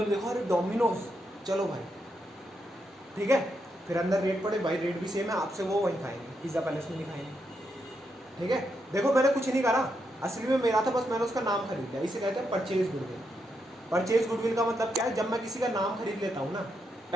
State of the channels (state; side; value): normal; both; correlation 0.82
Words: ने देखो अरे डोमिनोज चलो भाई, ठीक है। फिर अंदर रेट पड़े भाई, रेट भी सेम है आपसे, वो वहीं खाएंगे, पिज़्ज़ा पैलेस में नहीं खाएंगे, ठीक है। देखो मैंने कुछ नहीं करा, असली में मेरा था बस मैंने उसका नाम खरीद लिया, इसे कहते हैं परचेज गुडविल। परचेज गुडविल का मतलब क्या है, जब मैं किसी का नाम खरीद लेता हूँ ना